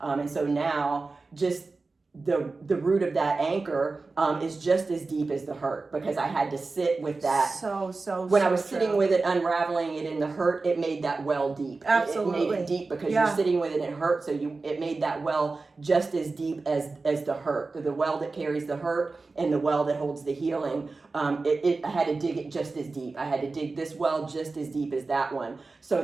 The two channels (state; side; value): quieter; left; 3.8 dB